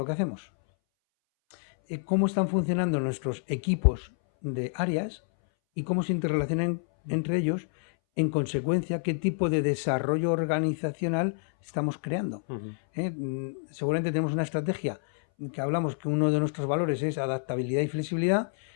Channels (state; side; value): silent; right; 59 dB below the other